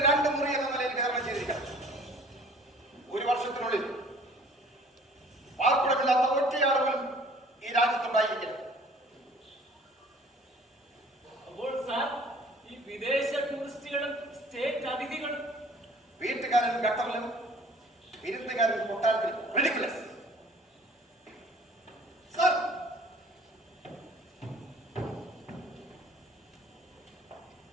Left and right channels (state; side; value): normal; both; correlation 0.51